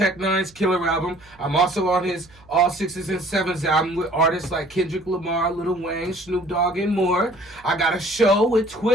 Nine's Killer album. I'm also on his All Sixes and Sevens album with artists like Kendrick Lamar, Lil Wayne, Snoop Dogg, and more. I got a show with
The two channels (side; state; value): right; noise; hum, 27 dB below the sound